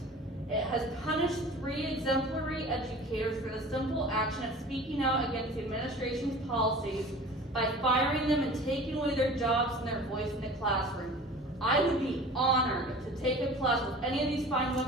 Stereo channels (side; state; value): both; normal; correlation 0.41